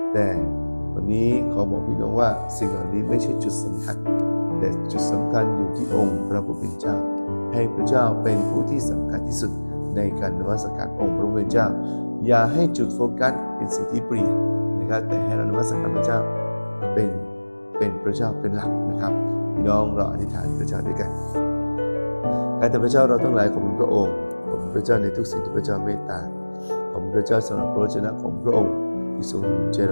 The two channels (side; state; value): both; inverted; correlation -1.00